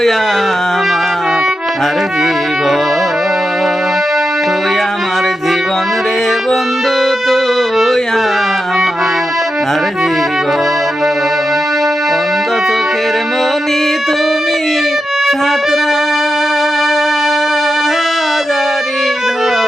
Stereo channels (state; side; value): normal; both; correlation 0.89